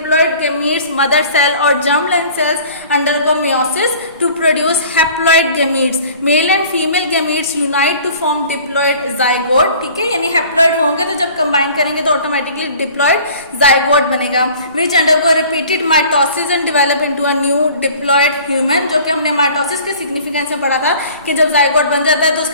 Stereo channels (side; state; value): both; inverted; correlation -0.48